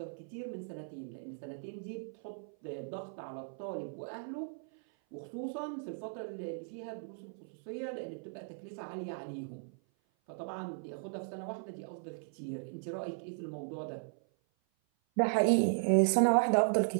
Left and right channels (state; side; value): silent; left; 53 dB below the other